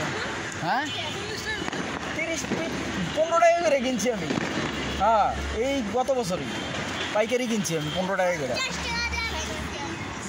হ্যাঁ, 15 টাকা করে কিনছি আমি। হ্যাঁ, এই গত বছরই পাইকারি কিনছি আমি 15 টাকা করে।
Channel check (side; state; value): both; identical; correlation 1.00